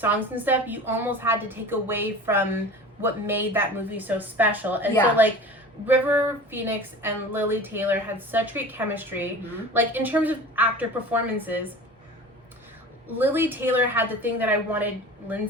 and stuff, you almost had to take away from what made that movie so special. And so, like, River Phoenix and Lily Taylor had such great chemistry. Like, in terms of actor performances, Lily Taylor had the thing that I wanted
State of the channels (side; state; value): both; normal; correlation 0.37